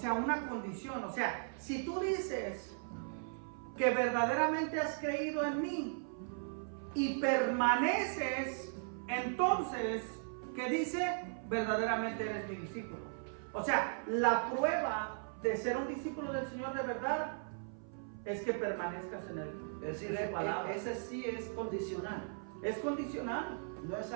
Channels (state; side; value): silent; left; 53 dB below the other